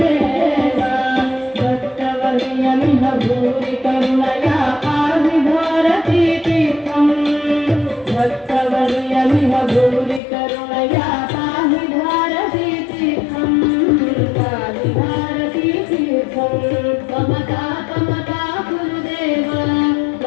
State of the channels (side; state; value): right; drops out; at 10.2 s